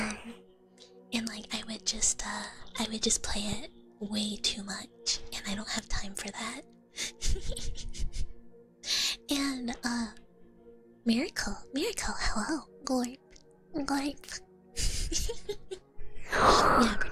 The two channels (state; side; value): identical; both; correlation 1.00